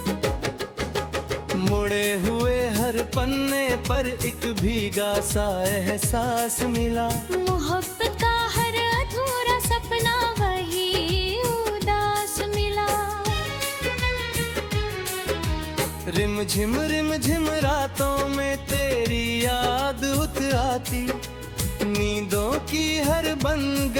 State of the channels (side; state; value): both; identical; correlation 1.00